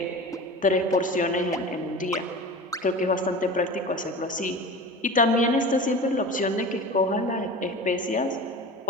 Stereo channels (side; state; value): both; normal; correlation 0.33